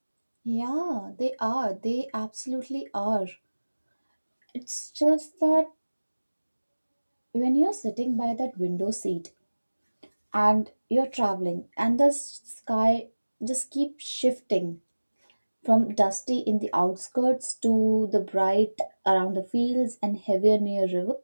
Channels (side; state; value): both; inverted; correlation -1.00